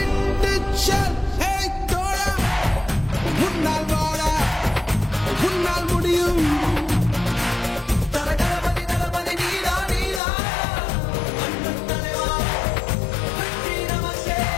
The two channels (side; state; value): right; drops out; at 10.2 s